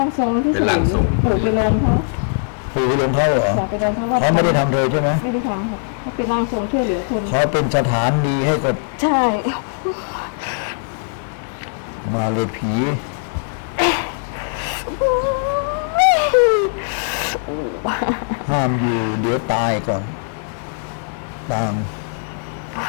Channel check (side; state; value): right; silent; digital silence